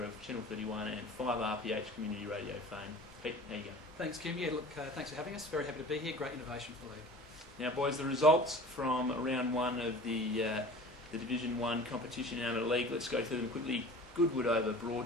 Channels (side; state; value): both; normal; correlation 0.42